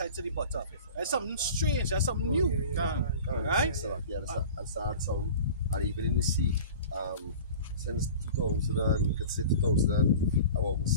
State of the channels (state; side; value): inverted; both; correlation -0.39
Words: to the bottom. That's something strange, that's something new. Right? So, yeah, I saw some, and even in the sea, since 2000, you could say 2000, about